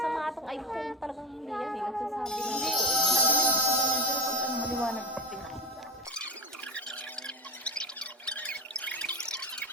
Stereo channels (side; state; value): both; normal; correlation 0.20